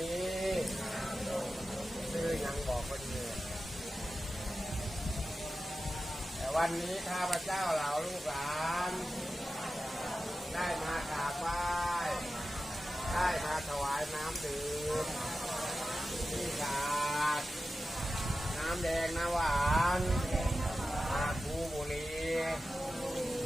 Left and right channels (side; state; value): both; normal; correlation 0.93